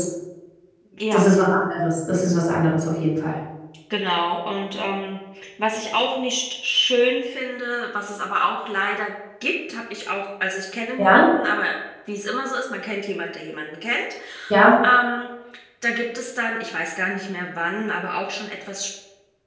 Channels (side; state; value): both; identical; correlation 1.00